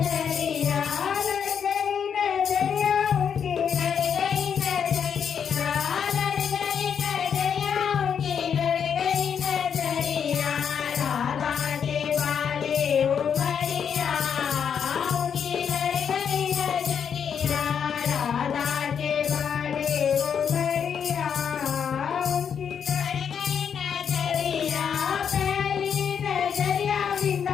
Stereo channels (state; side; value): quieter; right; 7.5 dB